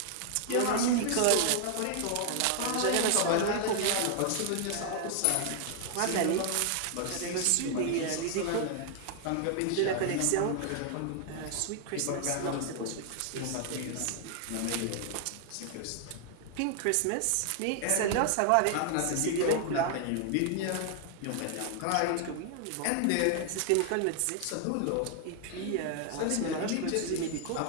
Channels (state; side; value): different; both; correlation 0.00